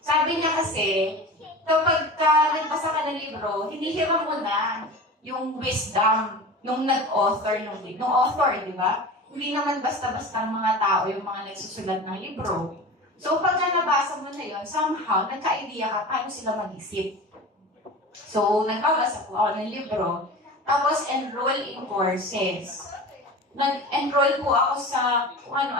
Sabi niya kasi, kapag nagbasa ka ng libro, hinihiram mo na yung wisdom nung nag-author nung author, di ba? Hindi naman basta-basta ng mga tao yung mga nagsusulat ng libro. So, pag nabasa mo na yun, somehow, nagka-idea ka paano sila mag-isip. So, nagbabasa po ako ng libro. Tapos, enroll in courses. Nag-enroll po ako sa kung ano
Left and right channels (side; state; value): both; normal; correlation 0.33